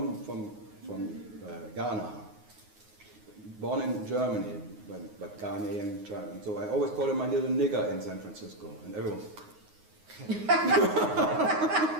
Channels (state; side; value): late; left; 9.5 ms